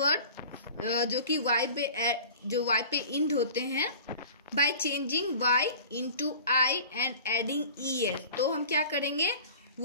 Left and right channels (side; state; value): both; inverted; correlation -0.41